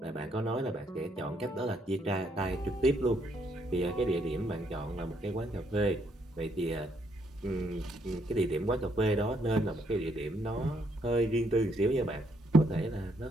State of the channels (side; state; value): both; normal; correlation 0.72